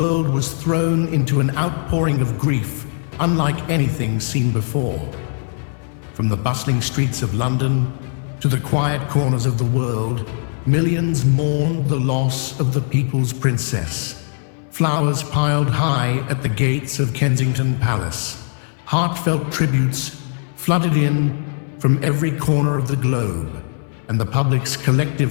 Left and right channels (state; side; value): silent; right; 62 dB below the other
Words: was thrown into an outpouring of grief unlike anything seen before. From the bustling streets of London to the quiet corners of the world, millions mourned the loss of the people's princess. Flowers piled high at the gates of Kensington Palace. Heartfelt tributes flooded in from every corner of the globe, and the public's